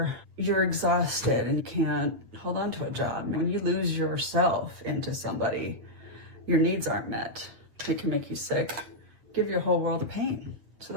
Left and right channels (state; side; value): late; left; 8.7 ms